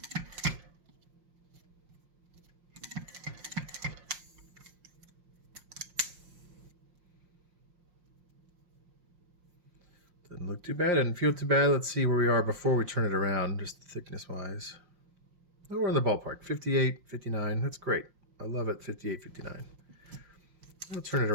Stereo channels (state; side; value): late; left; 5.6 ms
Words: Doesn't look too bad, didn't feel too bad. Let's see where we are before we turn it around, just thickness-wise. Oh, we're in the ballpark, 58, 59. That's great. I love it, 58, 59. I'll turn it